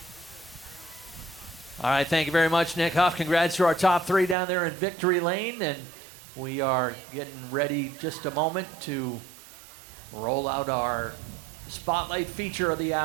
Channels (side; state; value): left; drops out; at 4.4 s